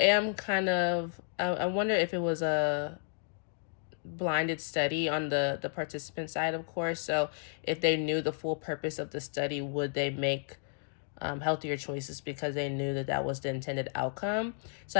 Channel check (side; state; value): right; silent; digital silence